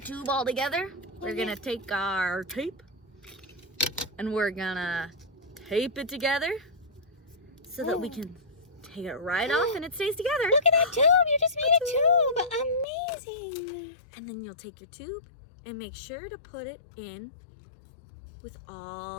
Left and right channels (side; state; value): right; drops out; at 12.9 s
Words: all together, we're gonna take our tape and we're gonna tape it together so that we can take it right off and it stays together. Look at that tube. You just made a tube. Amazing. And then you'll take your tube and make sure to put it in with